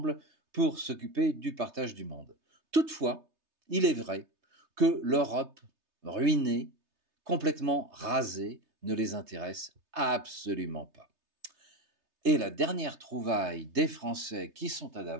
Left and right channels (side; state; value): left; late; 3.3 ms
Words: pour s'occuper du partage du monde. Toutefois, il est vrai que l'Europe ruinée, complètement rasée, ne les intéresse absolument pas. Et la dernière trouvaille des Français qui sont à